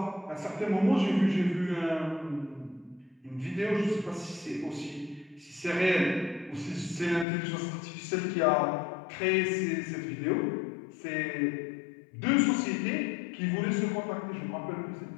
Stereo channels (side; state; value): right; drops out; at 7.2 s